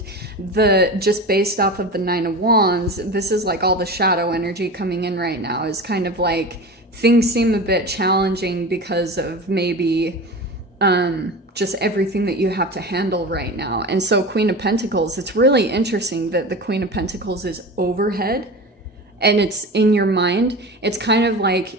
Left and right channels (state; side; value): normal; both; correlation 0.30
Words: just based off of the Nine of Wands, this is like all the shadow energy coming in right now is kind of like things seem a bit challenging because of maybe just everything that you have to handle right now. And so Queen of Pentacles, it's really interesting that the Queen of Pentacles is overhead and it's in your mind. It's kind of